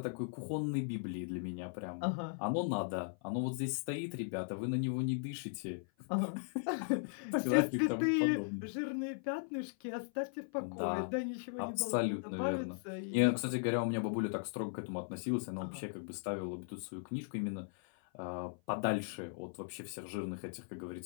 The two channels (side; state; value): right; silent; 53 dB below the other